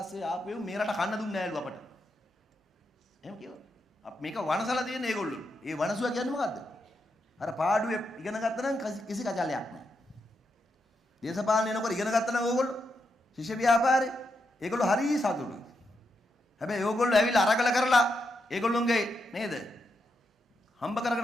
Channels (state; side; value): normal; both; correlation 0.83